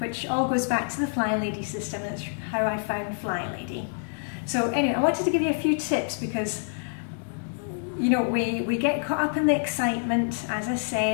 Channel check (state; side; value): silent; right; digital silence